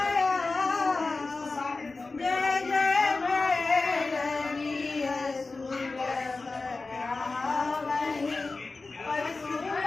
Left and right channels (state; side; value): quieter; right; 3.7 dB